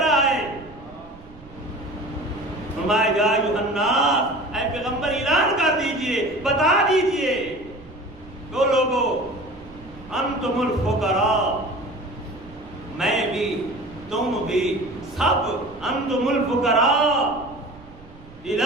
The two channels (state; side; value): noise; right; rumble, 21 dB below the sound